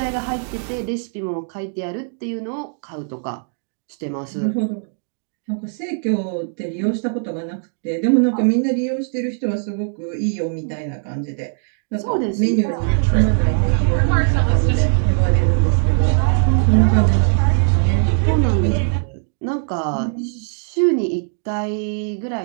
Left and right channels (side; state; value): left; silent; 64 dB below the other